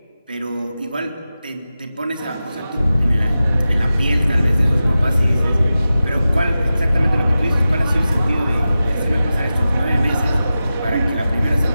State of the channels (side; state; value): both; inverted; correlation -0.93